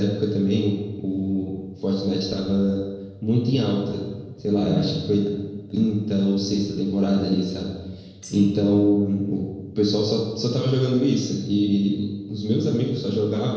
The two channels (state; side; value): identical; both; correlation 1.00